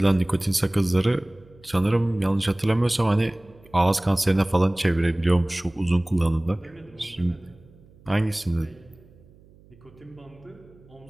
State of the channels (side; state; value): right; noise; hum, 26 dB below the sound